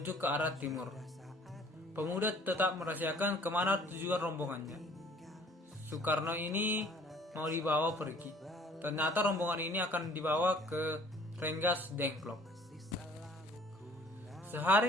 ke arah timur. Pemuda tetap merahasiakan kemana tujuan rombongannya. Soekarno ini mau dibawa pergi. Ternyata rombongan ini akan dibawa ke Rengas Dengklok.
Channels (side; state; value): both; normal; correlation 0.54